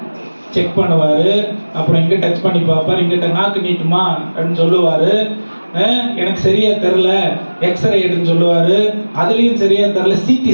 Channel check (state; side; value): inverted; both; correlation -1.00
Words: செக் பண்ணுவாரு. அப்புறம் இங்க டச் பண்ணி பார்ப்பாரு, இங்கிட்ட நாக்கு நீட்டுமா அப்படின்னு சொல்லுவாரு. எனக்கு சரியா தெரியல, எக்ஸ்ரே எடுன்னு சொல்லுவாரு. அதுலயும் சரியா தெரியல, சிடி